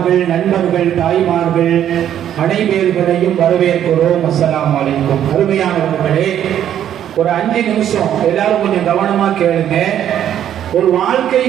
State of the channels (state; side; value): quieter; left; 10.5 dB